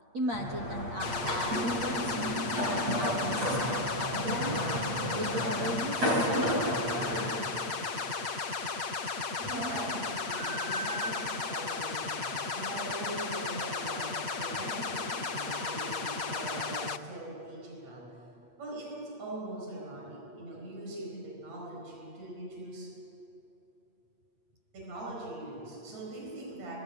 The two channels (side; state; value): left; late; 8.6 ms